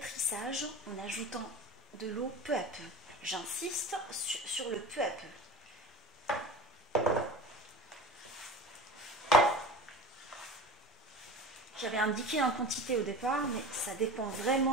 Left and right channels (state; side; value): normal; both; correlation 0.33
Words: en ajoutant de l'eau peu à peu. J'insiste sur le peu à peu. J'avais indiqué en quantité au départ, mais ça dépend